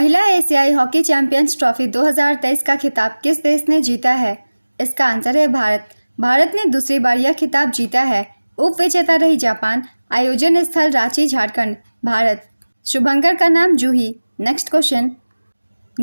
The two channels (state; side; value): inverted; both; correlation -1.00